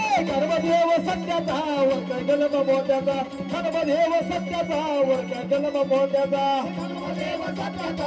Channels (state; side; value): identical; both; correlation 1.00